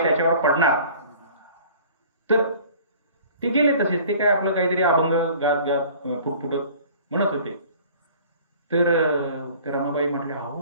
त्याच्यावर पडणार, तर ते गेले तसेच. ते काय आपलं काहीतरी अभंग गात गात फुटफुटत म्हणत होते. तर रमाबाई म्हटले, अहो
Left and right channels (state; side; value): inverted; both; correlation -0.48